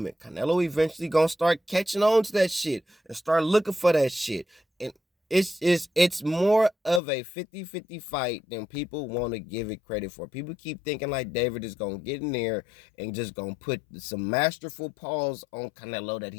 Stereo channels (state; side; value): drops out; right; at 7.0 s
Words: Canelo eventually going to start catching on to that shit and start looking for that shit. And it's more of a 50-50 fight than people want to give it credit for. People keep thinking like David is going to get in there and just going to put some masterful paws on Canelo that